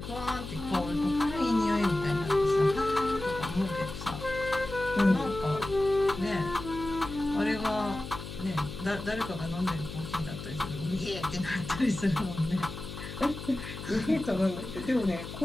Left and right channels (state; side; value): noise; left; hum, 10 dB below the sound